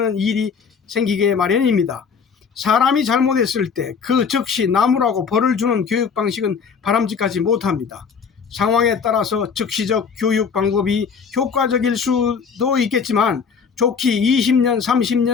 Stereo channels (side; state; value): right; quieter; 6.1 dB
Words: 일이 생기게 마련입니다. 사람이 잘못했을 때 그 즉시 나무라고 벌을 주는 교육 방식은 바람직하지 못합니다. 상황에 따라서 즉시적 교육 방법이 효과적일 수도 있겠지만 좋게 20년,